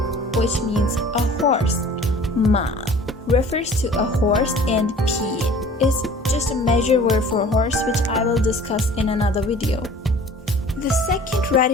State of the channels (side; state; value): both; normal; correlation 0.47